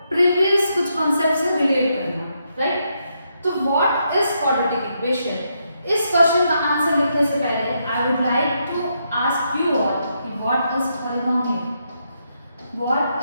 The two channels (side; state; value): both; inverted; correlation -0.79